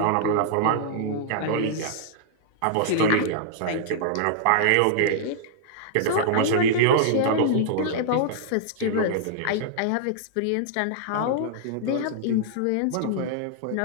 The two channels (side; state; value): both; different; correlation -0.01